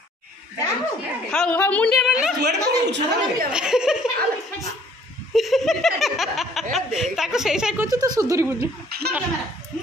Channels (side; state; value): both; normal; correlation 0.58